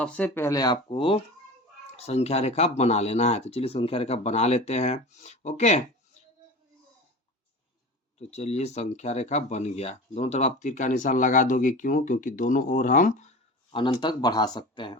पहले आपको संख्या रेखा बना लेना है। तो चलिए संख्या रेखा बना लेते हैं। ओके, तो चलिए संख्या रेखा बन गया। दोनों तरफ आप तीर का निशान लगा दोगे, क्यों? क्योंकि दोनों ओर हम अनंत तक बढ़ा सकते हैं।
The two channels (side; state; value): both; normal; correlation 0.33